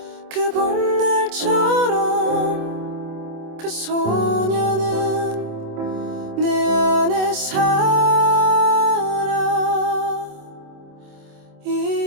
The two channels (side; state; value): left; late; 26 ms